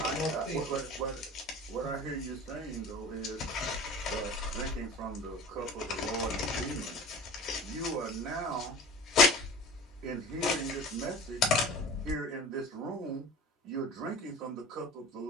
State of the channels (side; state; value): both; normal; correlation 0.39